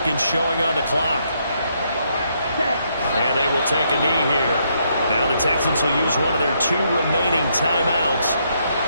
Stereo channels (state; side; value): inverted; both; correlation -0.74